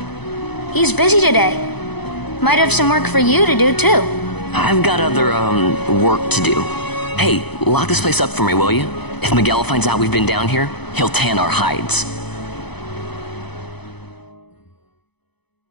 He's busy today. Might have some work for you to do, too. I've got other, work to do. Hey, lock this place up for me, will you? If Miguel finds out we've been down here, he'll tan our hides.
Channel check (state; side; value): late; right; 0.99 ms